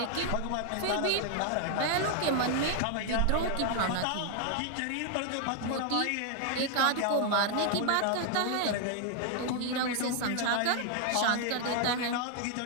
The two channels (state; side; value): different; both; correlation 0.00